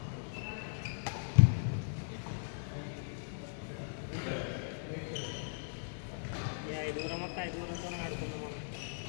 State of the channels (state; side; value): silent; right; digital silence